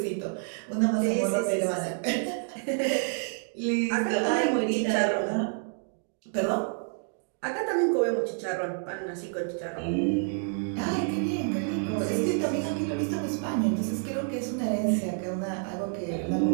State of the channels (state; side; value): silent; left; 59 dB below the other